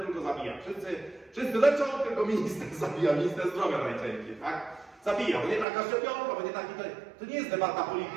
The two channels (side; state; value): left; drops out; at 5.7 s